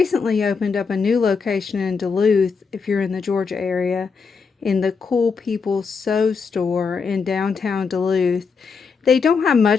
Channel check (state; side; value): quieter; right; 5.3 dB